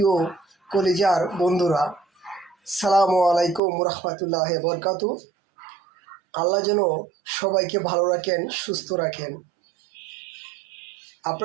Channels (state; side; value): drops out; left; at 3.6 s